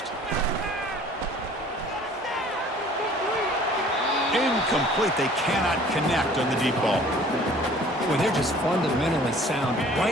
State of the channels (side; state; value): both; normal; correlation 0.51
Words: Incomplete. They cannot connect on the deep ball. Well, they're just fundamentally sound,